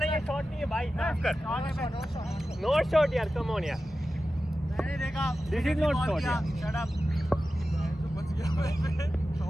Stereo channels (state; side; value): normal; both; correlation 0.93